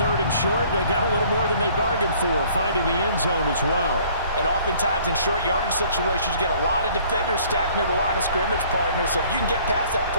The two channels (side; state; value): both; inverted; correlation -0.56